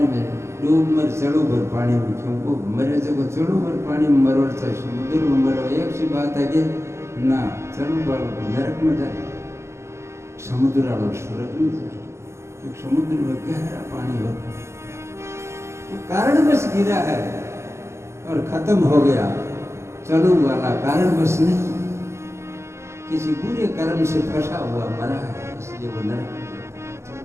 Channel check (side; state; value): left; late; 0.13 ms